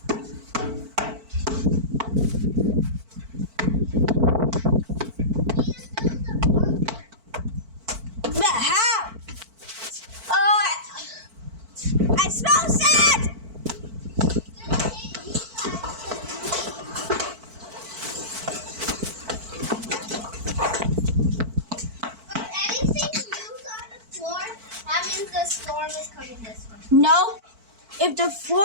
But how? Oh, I smell sand! If anything moves on the floor, that means the storm is coming this way. No. If the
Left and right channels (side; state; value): left; late; 4.5 ms